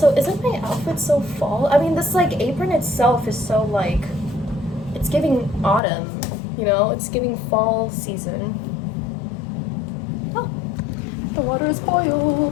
isn't my outfit so fall? I mean, this like apron itself is so like, it's giving autumn, you know? It's giving fall season. Oh, the water is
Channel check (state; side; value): drops out; right; at 5.8 s